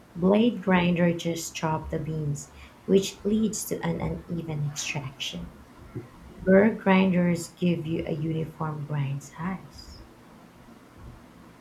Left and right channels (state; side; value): identical; both; correlation 1.00